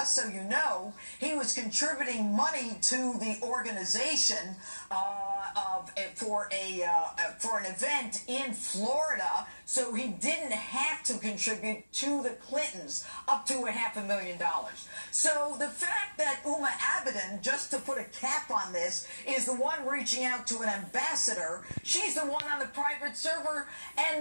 so you know, he was contributing money to the organization for an event in Florida, so he didn't have to contribute to the Clintons up to $500,000. So the fact that Uma Abedin, just to put a cap on this, is the one reaching out to an ambassador, she's the one on the private server,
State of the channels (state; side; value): inverted; both; correlation -1.00